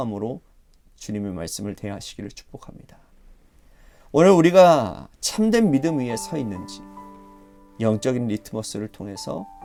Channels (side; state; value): both; identical; correlation 1.00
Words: 주님의 말씀을 대하시기를 축복합니다. 오늘 우리가 참된 믿음 위에 서 있는지 영적인 리트머스를 통해서